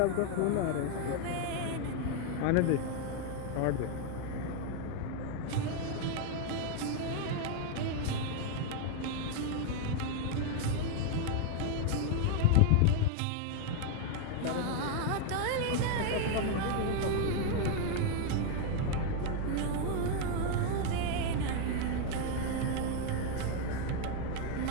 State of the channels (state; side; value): different; both; correlation 0.00